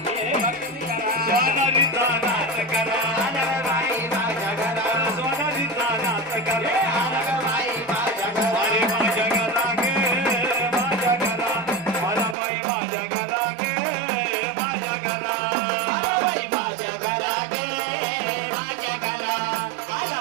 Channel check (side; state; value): left; drops out; at 12.4 s